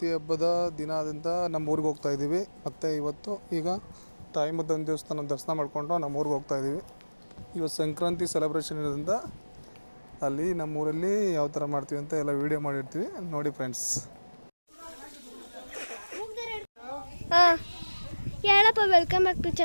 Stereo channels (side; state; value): both; inverted; correlation -1.00